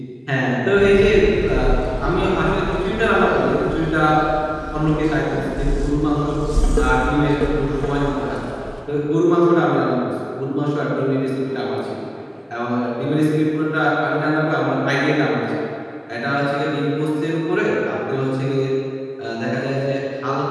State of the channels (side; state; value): both; identical; correlation 1.00